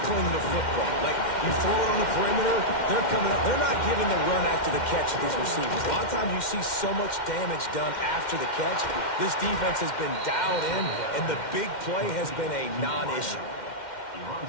the football. Like, you throw it on the perimeter, they're coming up. They're not giving the run after the catch to these receivers. A lot of times you see so much damage done after the catch. This defense has been dialed in, and the big play has been a non-issue.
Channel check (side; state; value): right; late; 2.1 ms